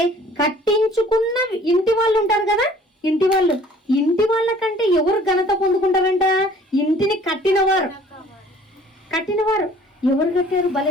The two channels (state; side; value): normal; both; correlation 0.53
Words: కట్టించుకున్న ఇంటి వాళ్ళు ఉంటారు కదా, ఇంటి వాళ్ళ కంటే ఎవరు ఘనత పొందుకుంటారంట? ఇంటిని కట్టినవారు. ఎవరు కట్టారు?